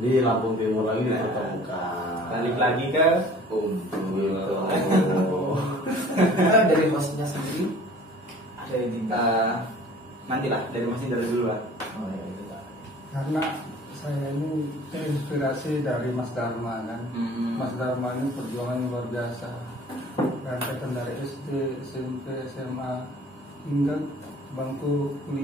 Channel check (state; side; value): normal; both; correlation 0.49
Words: Lampung Timur lagi ditemukan. Balik lagi ke Kumpul. Kan dari hostnya sendiri ada ide. Nantilah dari Mas Indra dulu lah. Oh ya itu Pak. karena saya ini terinspirasi dari Mas Dharma kan. Mas Dharma ini perjuangan luar biasa. Rentetan dari SD, SMP, SMA hingga bangku